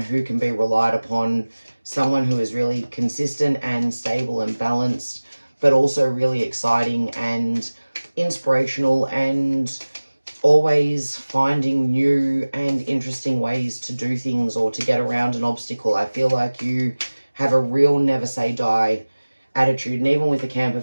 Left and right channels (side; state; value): both; inverted; correlation -1.00